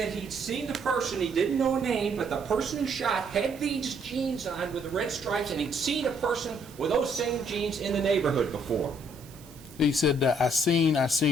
he'd seen the person, he didn't know a name, but the person who shot had these jeans on with the red stripes, and he'd seen a person with those same jeans in the neighborhood before. He said, I seen,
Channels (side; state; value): right; noise; hiss, 22 dB below the sound